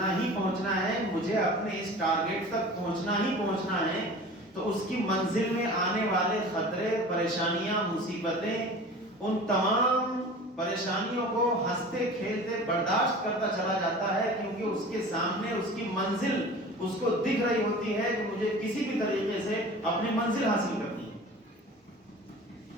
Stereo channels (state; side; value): normal; both; correlation 0.39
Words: ہی پہنچنا ہے, مجھے اپنے اس ٹارگٹ تک پہنچنا ہی پہنچنا ہے, تو اس کی منزل میں آنے والے خطرے, پریشانیاں, مصیبتیں, ان تمام پریشانیوں کو ہنستے کھیلتے برداشت کرتا چلا جاتا ہے, کیونکہ اس کے سامنے اس کی منزل اس کو دکھ رہی ہوتی ہے کہ مجھے کسی بھی طریقے سے اپنی منزل حاصل کرنی ہے.